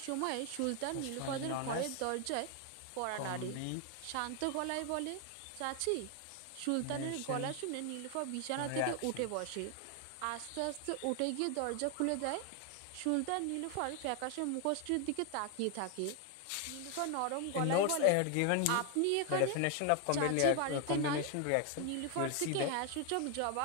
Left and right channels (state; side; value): different; both; correlation 0.01